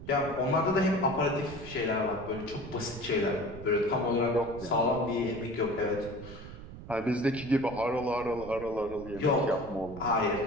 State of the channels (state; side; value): noise; right; rumble, 14 dB below the sound